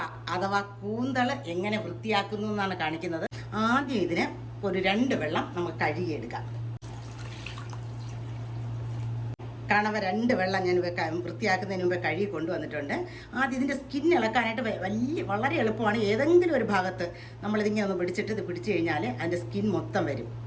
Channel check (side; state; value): both; identical; correlation 1.00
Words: അഥവാ കൂന്തൾ എങ്ങനെ വൃത്തിയാക്കുന്നു എന്നാണ് കാണിക്കുന്നത്. ആദ്യം ഇതിന് ഒരു 2 വെള്ളം നമുക്ക് കഴുകിയെടുക്കാം. കണവ 2 വെള്ളം ഞാൻ വൃത്തിയാക്കുന്നതിന് മുമ്പേ കഴുകി കൊണ്ടുവന്നിട്ടുണ്ട്. ആദ്യം ഇതിൻ്റെ സ്കിൻ ഇളക്കാനായിട്ട് വളരെ എളുപ്പമാണ്. ഏതെങ്കിലും ഒരു ഭാഗത്ത് നമ്മളിതിങ്ങനെ ഒന്ന് പിടിച്ചിട്ട് ഇത് പിടിച്ചു കഴിഞ്ഞാൽ അതിൻ്റെ സ്കിൻ മൊത്തം വരും.